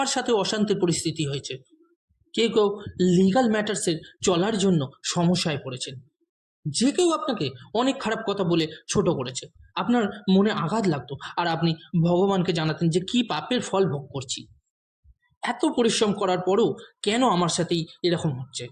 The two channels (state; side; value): identical; both; correlation 1.00